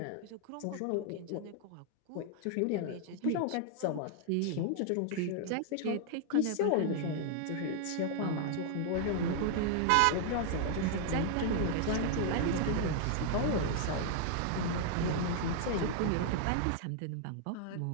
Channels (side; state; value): both; different; correlation 0.00